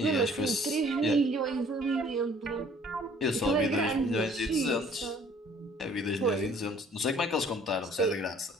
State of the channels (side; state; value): both; normal; correlation 0.56